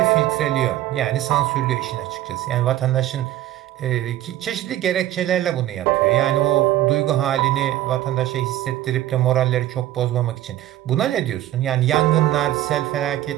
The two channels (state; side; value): quieter; left; 13.8 dB